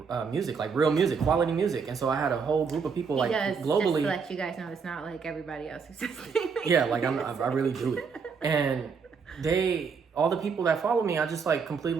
music, like real music, quality music. And so I had a whole group of people like globally. Just to let you guys know, it's not like everybody else who's listening. Yeah, like I really do it. And all the people that follow me, I just like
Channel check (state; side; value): quieter; left; 5.7 dB